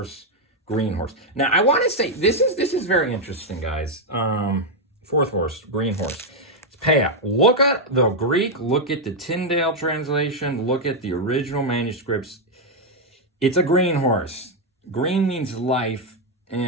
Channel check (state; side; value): normal; both; correlation 0.01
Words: green horse. Now, I want to say, this is very interesting, guys. 4th horse, green horse. It's papal. Look at the Greek, look at the Tyndale translation, look at the original manuscripts. It's a green horse. Green means life,